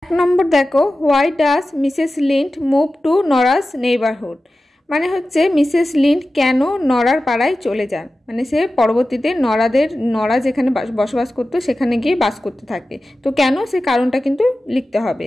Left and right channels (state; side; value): normal; both; correlation 0.94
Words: 1 নম্বর দেখো, why does Mrs Linde move to Nora's neighbourhood. মানে হচ্ছে মিসেস লিন্ড কেন নরার পাড়ায় চলে যান, মানে সে পরবর্তীতে নরা যেখানে বসবাস করতো সেখানে গিয়ে বাস করতে থাকে। তো কেন, সে কারণটা কিন্তু লিখতে হবে।